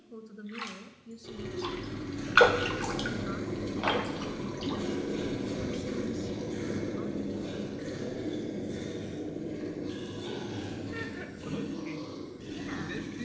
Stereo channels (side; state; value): both; identical; correlation 1.00